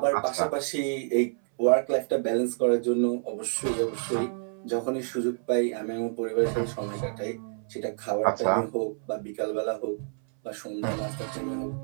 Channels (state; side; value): silent; left; 59 dB below the other